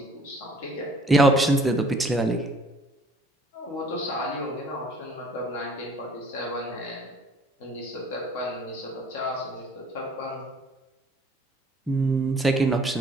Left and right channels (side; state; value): both; normal; correlation 0.56